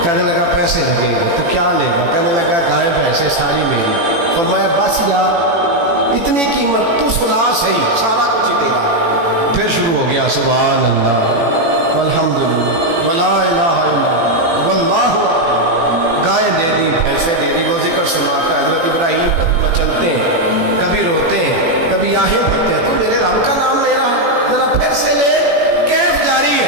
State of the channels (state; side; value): late; left; 18 ms